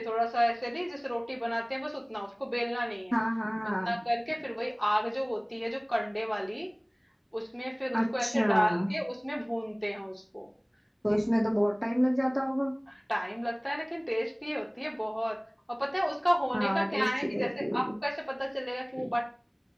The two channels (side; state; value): both; identical; correlation 1.00